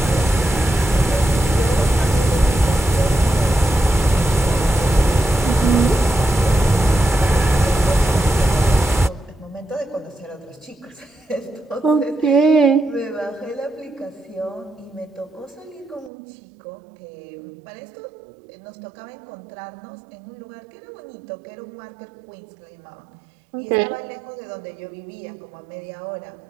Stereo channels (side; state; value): left; drops out; at 16.1 s